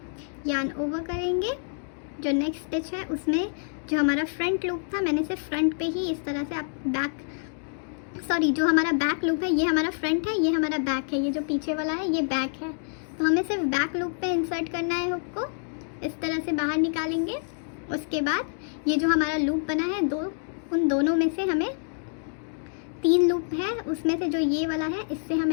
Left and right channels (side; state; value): right; silent; digital silence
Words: यान ओवर करेंगे। जो नेक्स्ट स्टिच है उसमें जो हमारा फ्रंट लूप था मैंने सिर्फ फ्रंट पे ही इस तरह से, आप जो हमारा बैक लूप है ये हमारा फ्रंट है, ये हमारा बैक है, ये जो पीछे वाला है ये बैक है। तो हमें सिर्फ बैक लूप पे इंसर्ट करना है हुक को, इस तरह से बाहर निकालेंगे। उसके बाद ये जो हमारा लूप बना है उन दोनों में से हमें 3 लूप है, उसमें से जो ये वाला है इससे हम